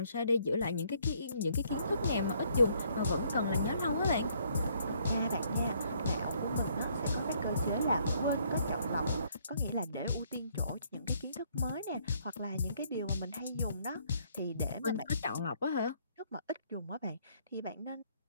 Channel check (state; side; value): inverted; both; correlation -0.67